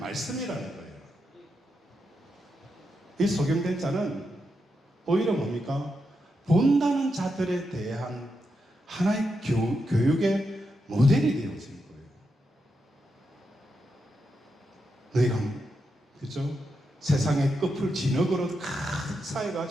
거예요. 이 소경된 자는 오히려 뭡니까? 본다는 자들에 대한 하나의 교육의 모델이 되어진 거예요. 너희가 그죠? 세상의 끝을 진흙으로 가득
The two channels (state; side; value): normal; both; correlation 0.85